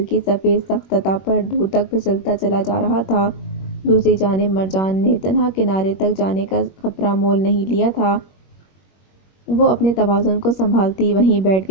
کی سفید سخت سطح پر دور تک پھسلتا چلا جا رہا تھا۔ دوسری جانب مرجان نے تنہا کنارے تک جانے کا خطرہ مول نہیں لیا تھا۔ وہ اپنے توازن کو سنبھالتی وہیں بیٹھ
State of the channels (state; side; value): late; right; 21 ms